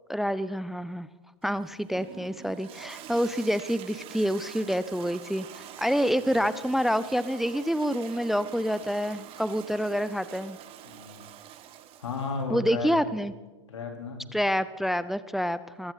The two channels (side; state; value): both; normal; correlation 0.89